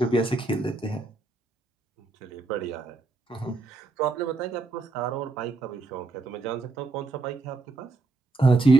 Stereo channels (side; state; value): left; quieter; 3.4 dB